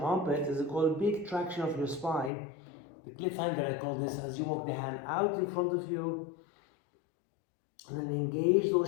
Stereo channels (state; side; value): drops out; right; at 2.3 s